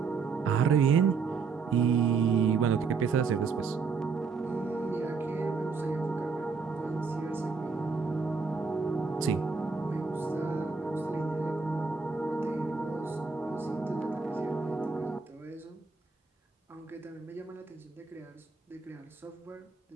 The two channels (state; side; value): quieter; left; 5.0 dB